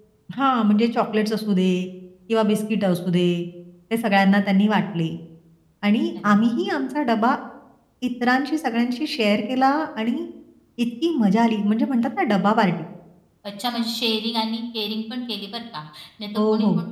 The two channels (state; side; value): identical; both; correlation 1.00